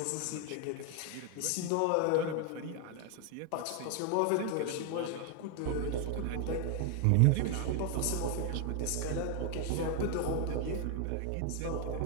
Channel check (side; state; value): both; different; correlation 0.01